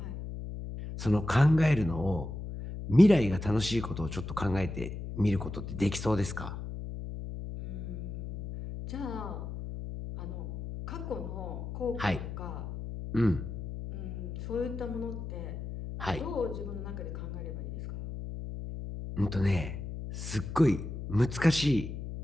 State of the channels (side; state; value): left; noise; hum, 7 dB below the sound